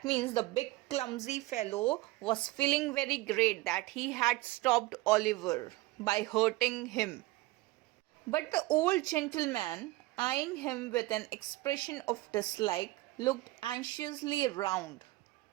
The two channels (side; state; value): left; quieter; 19.4 dB